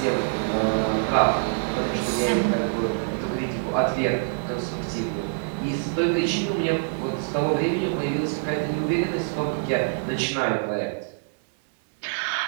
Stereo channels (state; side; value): silent; left; digital silence